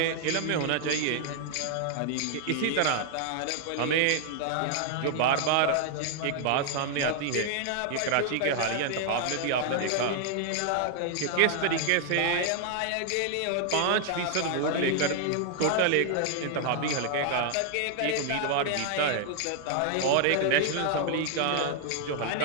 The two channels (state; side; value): different; both; correlation 0.00